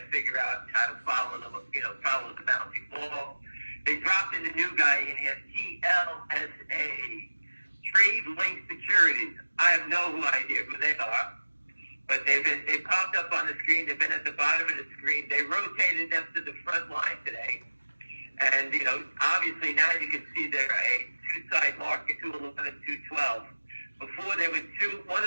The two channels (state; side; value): inverted; both; correlation -1.00